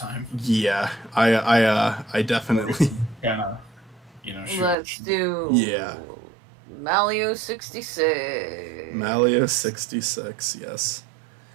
Yeah, I definitely Kinda, shoot. Let's do yeah. Mario 66. Mario 66, yes.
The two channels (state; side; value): drops out; left; at 4.8 s